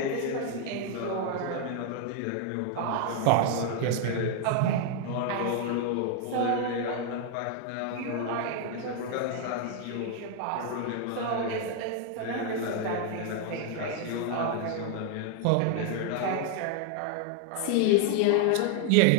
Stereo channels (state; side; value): different; both; correlation 0.00